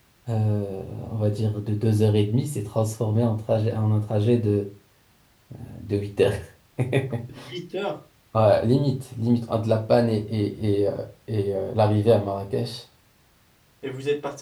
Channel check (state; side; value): identical; both; correlation 1.00